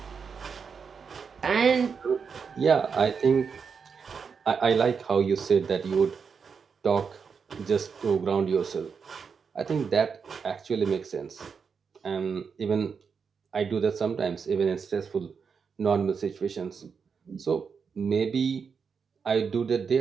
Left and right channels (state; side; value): quieter; left; 5.9 dB